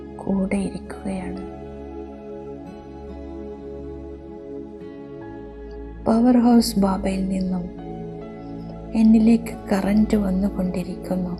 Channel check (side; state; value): both; identical; correlation 1.00